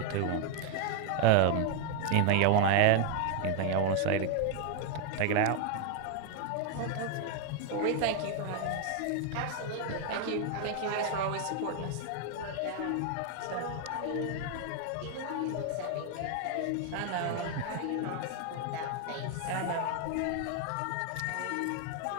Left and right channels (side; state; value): both; different; correlation 0.00